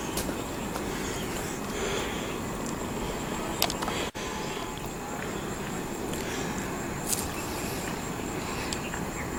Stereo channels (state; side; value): identical; both; correlation 1.00